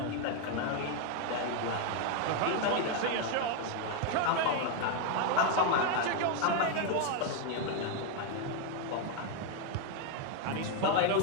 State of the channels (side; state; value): both; different; correlation 0.01